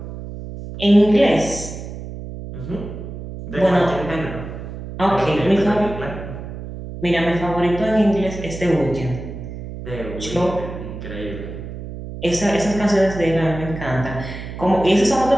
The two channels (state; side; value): noise; right; hum, 10 dB below the sound